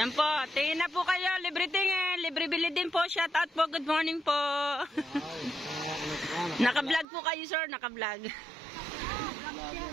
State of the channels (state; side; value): drops out; left; at 7.1 s